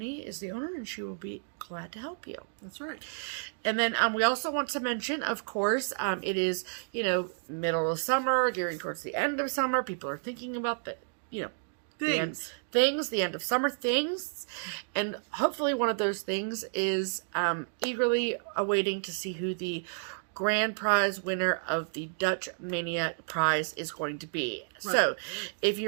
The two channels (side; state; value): left; silent; digital silence